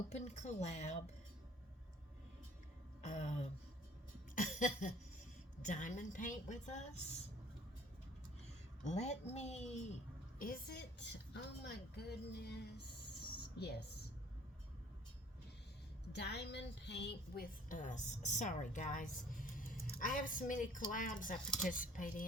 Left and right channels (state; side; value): normal; both; correlation 0.54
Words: collab Diamond Paint with Us. Is it? Oh my goodness. Yes. Diamond Paint with Us. Sorry guys. I have so many collabs I participate